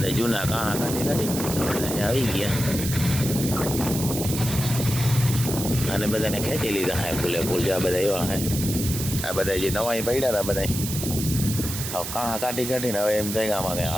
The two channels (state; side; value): noise; right; hiss, 6 dB below the sound